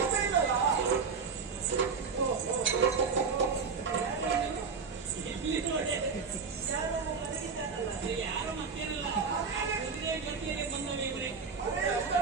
ಇಲ್ಲಲ್ಲ. ಇಲ್ಲಿ ನೋಡಿ ಯಾರೋ ಮನೆಗಿದ್ದಾನಲ್ಲ, ಯಾರ ಮತ್ತೇನಲ್ಲ ಕುದುರೆ ಜೊತೆಯಲ್ಲಿ ಬಂದವ ಇವರೇ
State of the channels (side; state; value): left; quieter; 5.2 dB